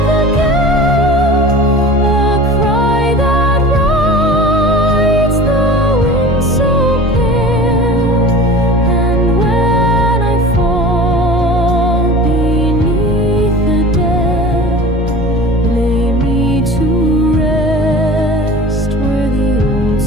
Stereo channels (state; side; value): normal; both; correlation 0.39